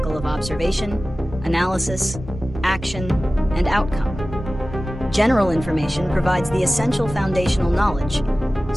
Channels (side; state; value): both; normal; correlation 0.96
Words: of observation, analysis, action, and outcome. General information provides the essential foundational knowledge,